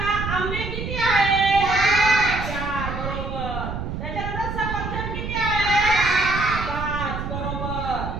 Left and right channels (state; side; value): noise; right; rumble, 5 dB below the sound